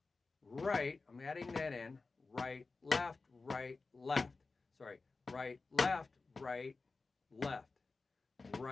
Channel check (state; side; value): quieter; right; 3.9 dB